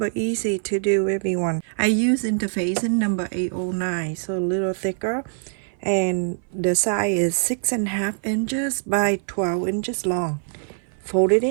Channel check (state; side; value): silent; left; 59 dB below the other